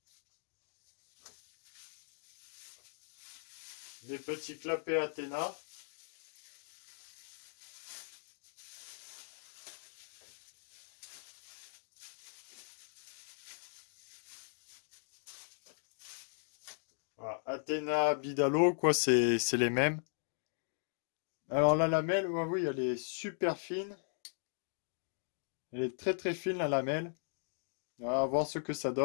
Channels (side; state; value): right; silent; digital silence